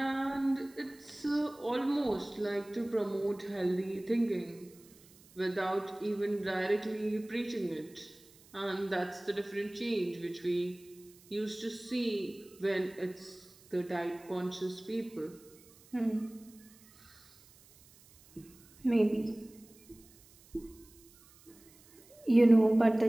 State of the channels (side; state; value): right; noise; hiss, 26 dB below the sound